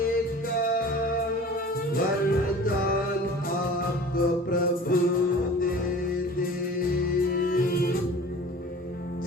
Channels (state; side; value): normal; both; correlation 0.42